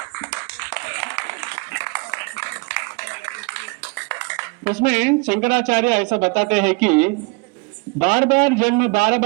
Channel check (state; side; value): quieter; left; 29.2 dB